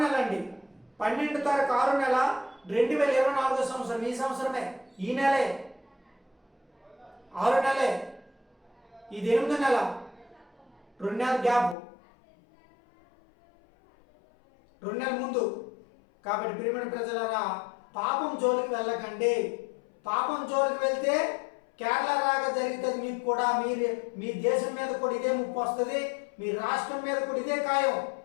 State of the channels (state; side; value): drops out; right; at 11.8 s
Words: నెల అండి. 12వ తారీఖు 6వ నెల 2024 సంవత్సరం. ఈ సంవత్సరమే, ఈ నెలే, 6వ నెలే. ఇది 8వ నెల, 2 నెలల గ్యాప్, 2 నెలల ముందు. కాబట్టి ప్రియమైన ప్రజలారా, పాపం జోలికి వెళ్ళకండి. పాపం జోలికి వెళ్తే కేరళ రాగా జరుగుతుంది మీకు కూడా. మీ దేశం మీద కూడా ఇదే ముప్పు వస్తుంది, మీ రాష్ట్రం మీద కూడా ఇదే ఖాయం.